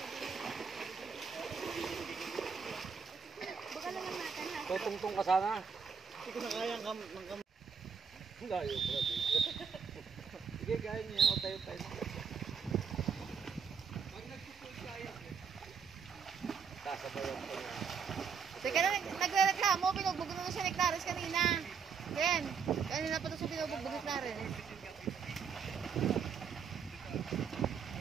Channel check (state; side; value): quieter; left; 6.3 dB